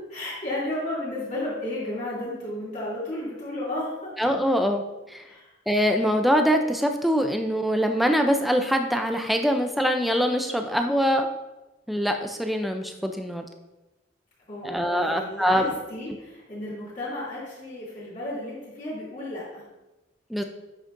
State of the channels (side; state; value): both; normal; correlation 0.70